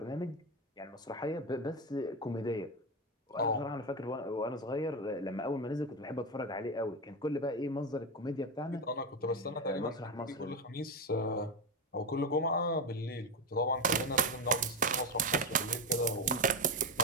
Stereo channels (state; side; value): normal; both; correlation 0.13